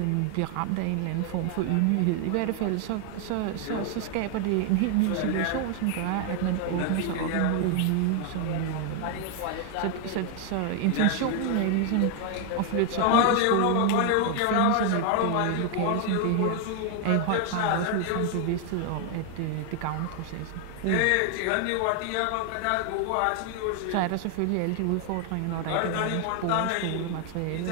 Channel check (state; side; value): different; both; correlation 0.00